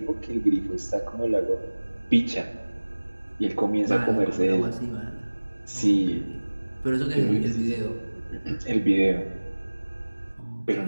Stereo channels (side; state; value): both; inverted; correlation -1.00